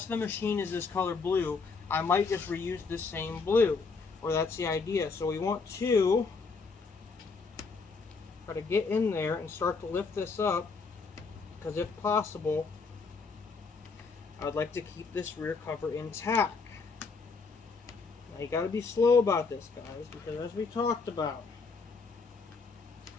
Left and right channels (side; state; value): right; quieter; 4.6 dB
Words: of the machine is this color blue, I might just reuse this same blue, or that's the idea. So we want to try to get in there and start to lift this up, because if possible, I would like to keep this rear cover intact. Now you got to be slow about this, guys, because as we talked about,